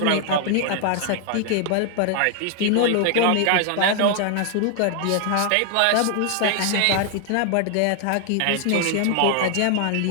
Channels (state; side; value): different; both; correlation 0.00